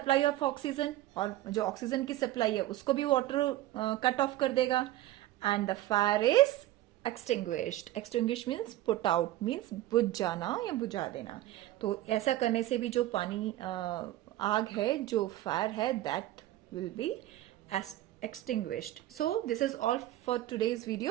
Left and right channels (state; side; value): quieter; left; 15.0 dB